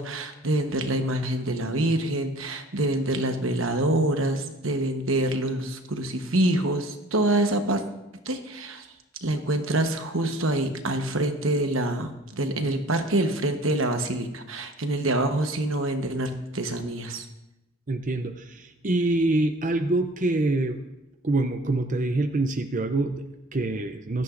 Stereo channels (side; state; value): both; normal; correlation 0.49